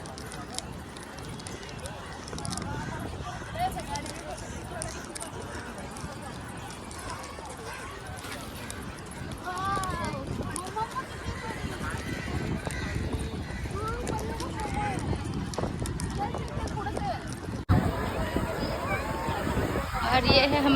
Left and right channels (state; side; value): identical; both; correlation 1.00